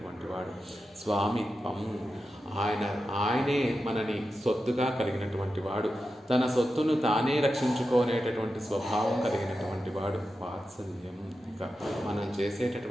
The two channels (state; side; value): normal; both; correlation 0.90